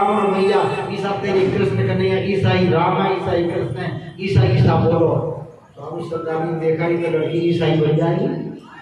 रमैया, ईसा तेरे कृष्ण कन्हैया, ईसा ही राम है, ईसा ही कृष्ण है, ईसा ईसा बोलो। स्वामी श्रद्धानंद देखा ही तो लड़की ईसाई बन जाएगी,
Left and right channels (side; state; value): both; identical; correlation 1.00